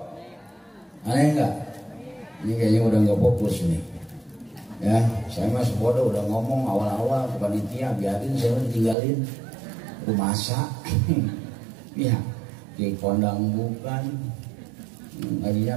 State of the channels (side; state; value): left; drops out; at 9.0 s